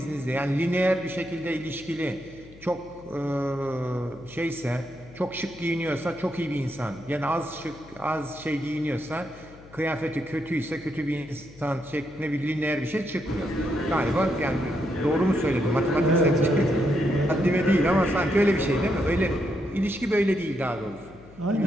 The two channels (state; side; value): noise; left; hum, 21 dB below the sound